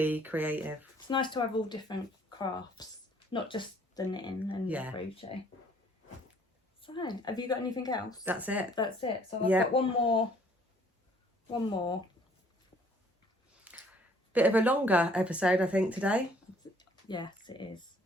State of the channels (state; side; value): normal; both; correlation 0.60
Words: creative. It's nice to have all different crafts, not just the knitting and the crochet. So, have you got anything else? That's it. So I've got one more. Bit of a longer episode, I think, today. Yes, it is.